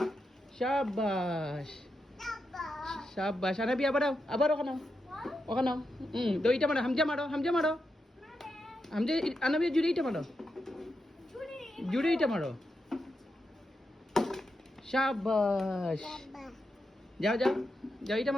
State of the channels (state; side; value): normal; both; correlation 0.86